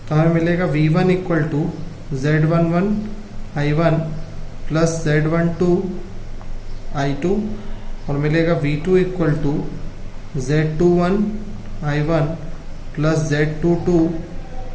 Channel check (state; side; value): identical; both; correlation 1.00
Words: तो हमें मिलेगा V1 equal to Z11 I1 plus Z12 I2, और मिलेगा V2 equal to Z21 I1 plus Z22